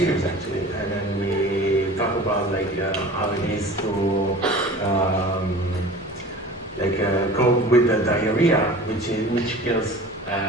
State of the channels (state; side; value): normal; both; correlation 0.40